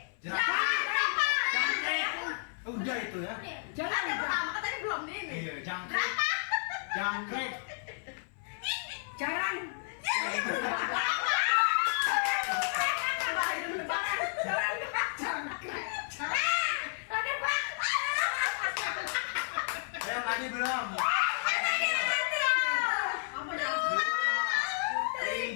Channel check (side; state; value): right; silent; 57 dB below the other